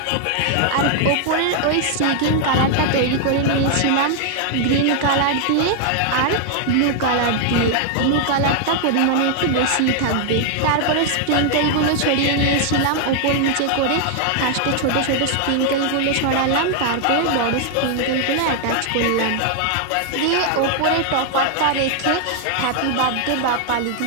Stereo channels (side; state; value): both; different; correlation 0.00